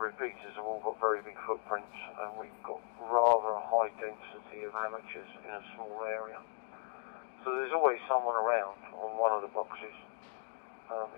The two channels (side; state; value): right; silent; digital silence